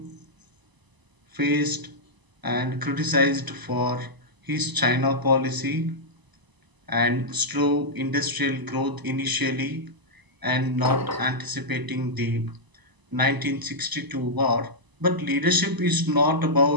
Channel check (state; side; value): late; left; 1.0 ms